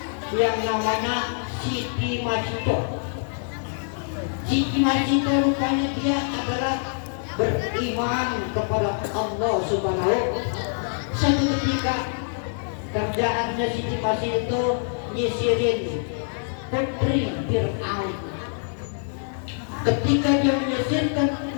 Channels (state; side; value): silent; right; digital silence